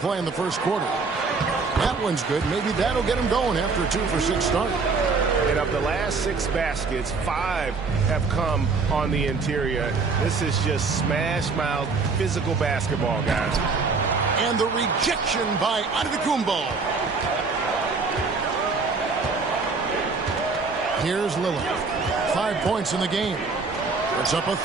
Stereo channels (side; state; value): left; quieter; 4.4 dB